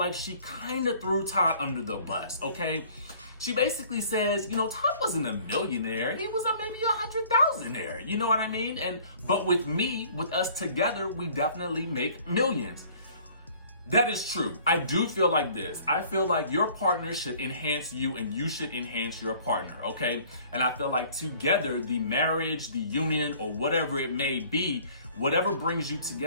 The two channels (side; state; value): both; inverted; correlation -0.54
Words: she kind of threw Todd under the bus, okay? She basically says, you know, Todd wasn't a millionaire. He was maybe 100,000-aire. You know what I mean? But with me, with us together, we definitely make millions. That is true. I do feel like this. I feel like your partner should enhance you and you should enhance your partner, okay? And I feel like together, the marriage, the union, or whatever it may be, whatever brings you